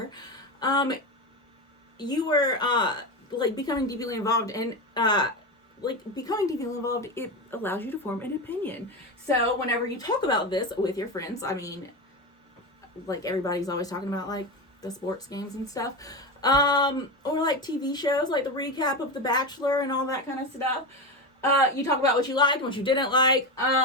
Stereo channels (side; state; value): both; normal; correlation 0.18